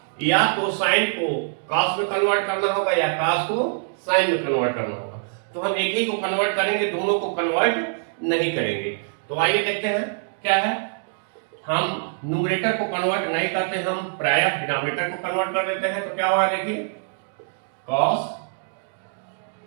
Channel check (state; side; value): silent; left; digital silence